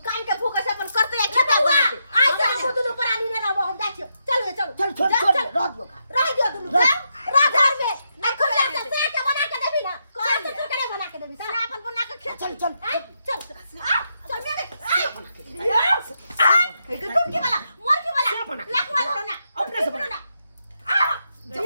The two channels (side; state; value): both; inverted; correlation -0.81